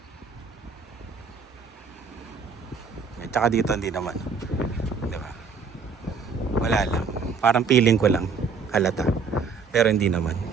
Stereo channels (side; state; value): left; quieter; 5.2 dB